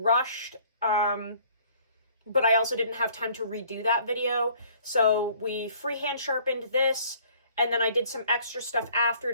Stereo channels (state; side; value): inverted; both; correlation -0.56